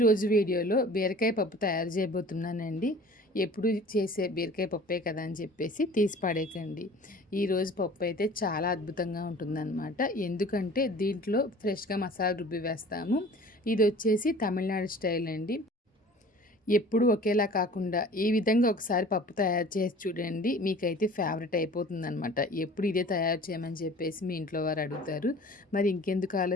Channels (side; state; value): both; normal; correlation 0.45